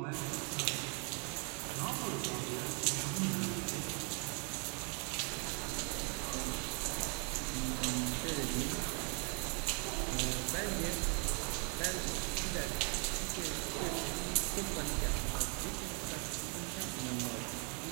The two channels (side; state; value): left; quieter; 36.5 dB